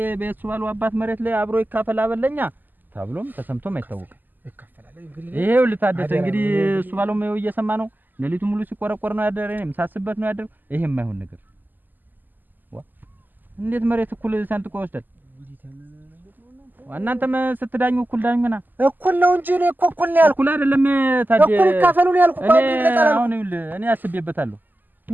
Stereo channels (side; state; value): left; late; 0.087 ms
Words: በሱ ባለው አባት መሬት ላይ አብሮ ይካፈል አበለኛ ተብሎም ተሰምቶም አይታወቅም። ይካፈላል እንግዲህ ይሄው ልታደሰ እንግዲህ እሱ ባለው ነው እየሰማ ነው። ሌሊቱ ሙሉ ሲቆረቆር ነው ያደረ። እኔም ሳስበት ነው ያደረ። ይሄ የማይሆን ነገር እንዴት መሬት እኩል ሰንጥቆ ይወስዳል? እናንተም ስትዳኙ እኩል ዳኙና እኩል ነው እንጂ እኔ እኮ እኩል ነው ያልኩት። እኩል አይደለም ታዲያ እኩል ይካፈሉ ነው ያልኩት። እኔ አስቤበታለሁ።